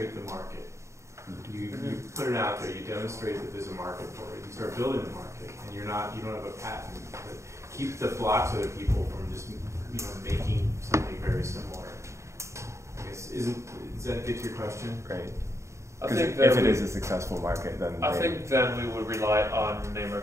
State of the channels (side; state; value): left; late; 0.14 ms